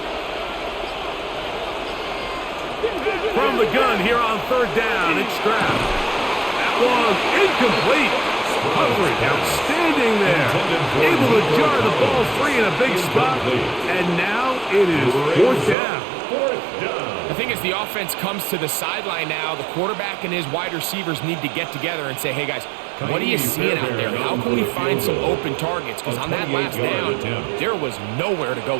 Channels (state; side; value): drops out; left; at 15.8 s